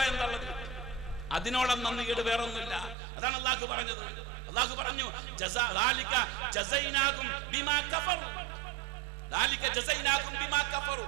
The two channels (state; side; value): drops out; left; at 3.0 s